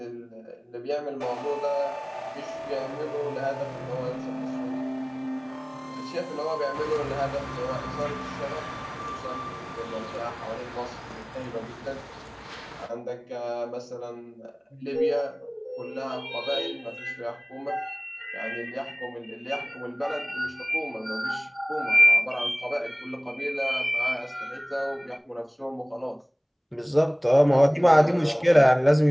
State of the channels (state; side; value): identical; both; correlation 1.00